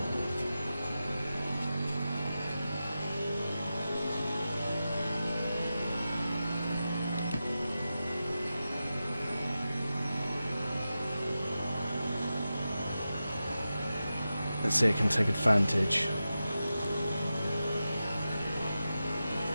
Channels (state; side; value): inverted; both; correlation -0.92